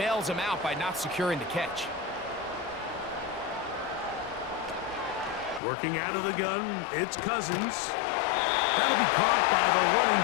him out by not securing the catch. Working out of the gun, it's Cousins. That'll be caught by the running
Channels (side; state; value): right; drops out; at 5.6 s